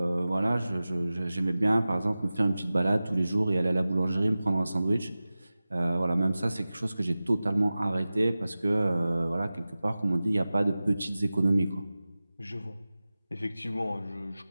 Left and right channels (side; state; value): both; inverted; correlation -0.96